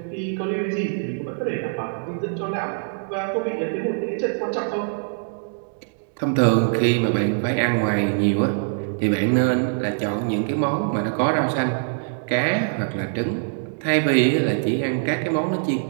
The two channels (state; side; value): silent; left; digital silence